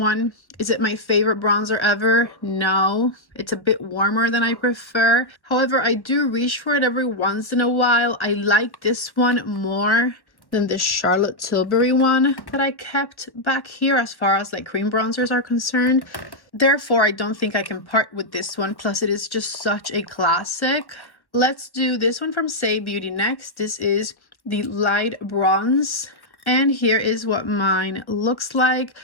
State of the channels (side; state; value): right; late; 1.1 ms